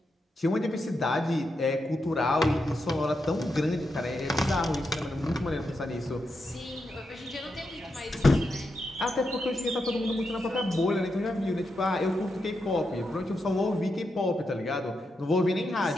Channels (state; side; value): normal; both; correlation 0.85